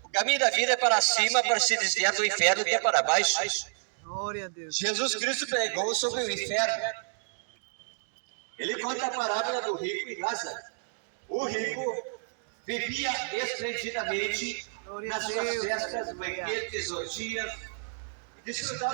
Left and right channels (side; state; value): left; silent; digital silence